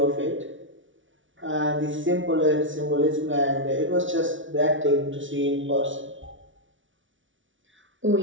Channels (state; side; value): late; left; 0.56 ms